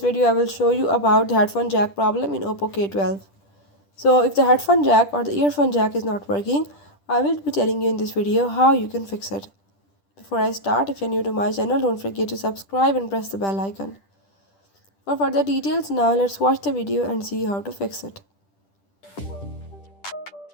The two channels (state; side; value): late; right; 10 ms